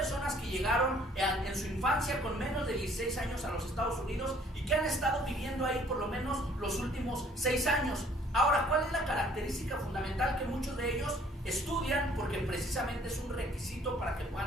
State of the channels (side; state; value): both; normal; correlation 0.58